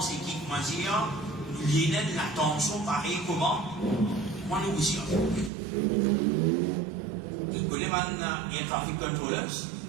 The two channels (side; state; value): left; drops out; at 5.5 s